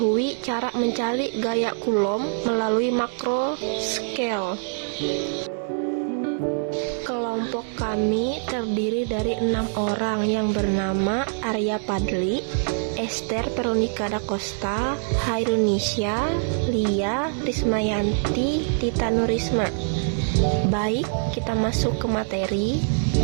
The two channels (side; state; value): left; silent; digital silence